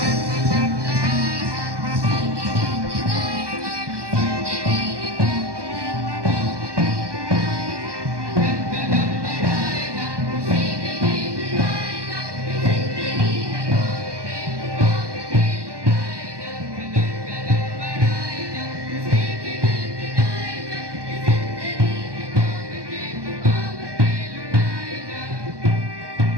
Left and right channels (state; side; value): late; left; 1.2 ms